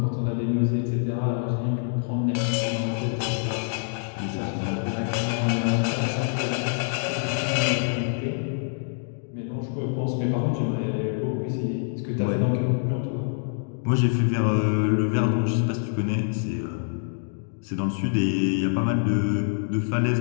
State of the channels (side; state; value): right; silent; digital silence